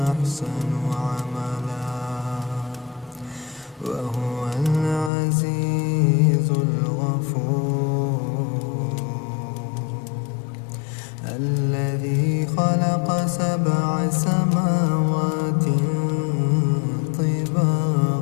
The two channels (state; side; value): drops out; right; at 5.1 s